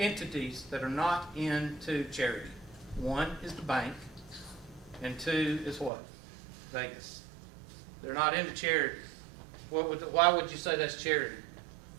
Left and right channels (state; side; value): drops out; left; at 5.9 s